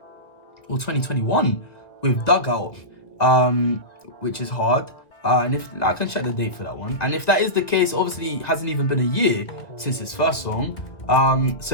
2021 with Dugout, which is hard. And if I can check the date for that one. And if that is the case, obviously it hasn't even been a year since his first song.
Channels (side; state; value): right; late; 1.7 ms